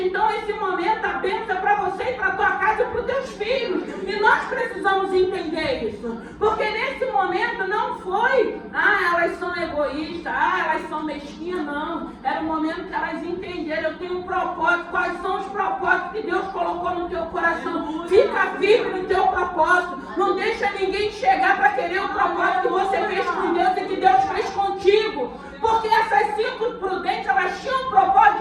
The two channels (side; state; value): both; identical; correlation 1.00